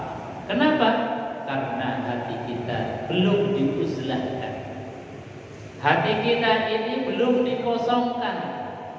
Kenapa? Karena hati kita belum diuzlahkan. Hati kita ini belum dikosongkan.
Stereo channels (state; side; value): identical; both; correlation 1.00